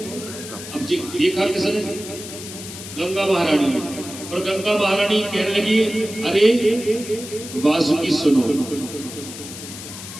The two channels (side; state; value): left; noise; hiss, 11 dB below the sound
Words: अब देखा किसने, गंगा महारानी ने। और गंगा महारानी कहने लगी अरे वासुकी सुनो,